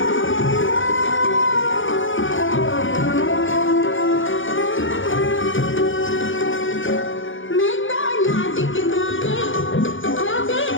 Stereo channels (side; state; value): right; late; 0.57 ms